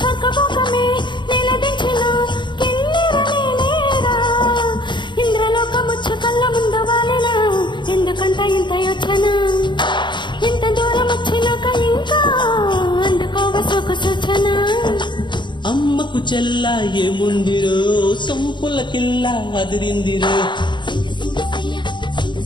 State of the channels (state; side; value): late; right; 0.22 ms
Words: నిలదించిన కిన్నెరనే నేడా ఇంద్రలోకముచ్చు కళ్ళ ముందు వాలిన ఎందుకంట ఇంత యోచన ఇంత దూరం వచ్చినాక ఇంకా అందుకోవ సుఖ సూచన అమ్మకు చెల్ల ఏముందిరో సొంపుల కిల్ల అదిరిందిరో